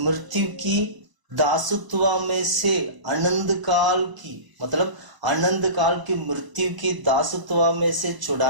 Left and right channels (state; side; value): late; left; 1.0 ms